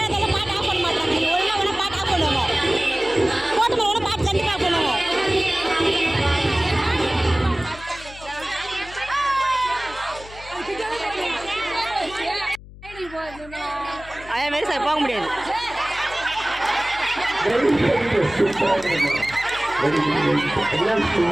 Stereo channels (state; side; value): noise; left; hum, 18 dB below the sound